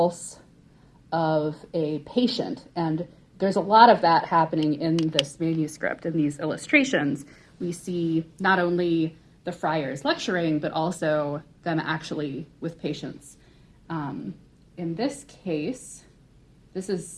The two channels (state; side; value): identical; both; correlation 1.00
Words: of a patient, and there's a lot of that happening in this manuscript. In these illustrations, we see not only the friars lecturing, but also them actually with patients. In this case, this is